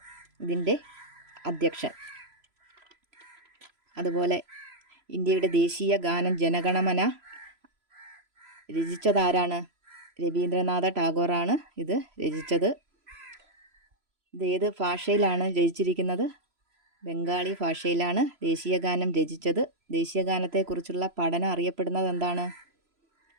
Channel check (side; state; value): left; late; 3.0 ms